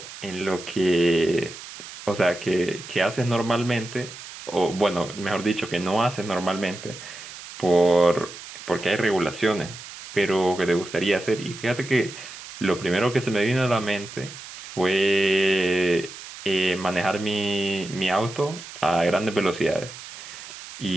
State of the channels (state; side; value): noise; right; hiss, 14 dB below the sound